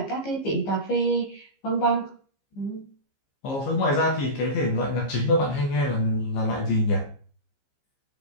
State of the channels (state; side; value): late; right; 15 ms